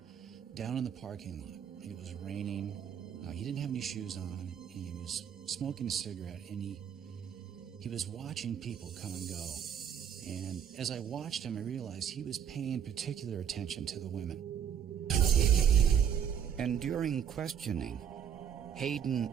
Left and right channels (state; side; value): quieter; left; 8.6 dB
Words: down in the parking lot. It was raining. He didn't have any shoes on. He was smoking a cigarette, and he was watching people come and go. And as I watched him, I realized he was paying particular attention to the women." And during questioning, Hayden